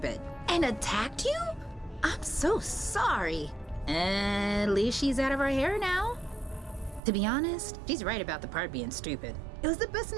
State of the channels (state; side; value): drops out; left; at 7.0 s